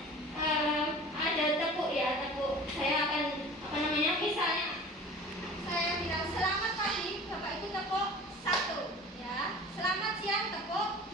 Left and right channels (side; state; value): both; normal; correlation 0.41